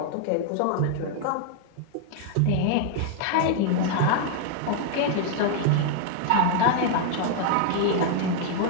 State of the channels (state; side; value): different; both; correlation 0.00